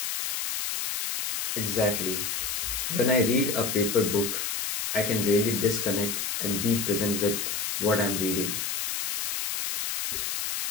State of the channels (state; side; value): noise; left; hiss, 2 dB below the sound